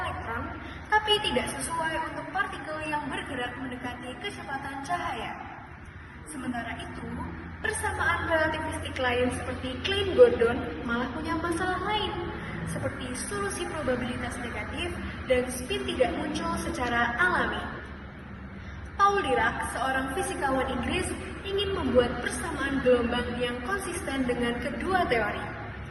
tapi tidak sesuai untuk partikel yang bergerak mendekati kecepatan cahaya. Sementara itu, persamaan relativistik lain seperti Klein-Gordon malah punya masalah lain, seperti solusi probabilitas negatif dan spin tidak muncul secara alami. Paul Dirac, seorang fisikawan Inggris, ingin membuat persamaan gelombang yang konsisten dengan kedua teori.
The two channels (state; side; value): identical; both; correlation 1.00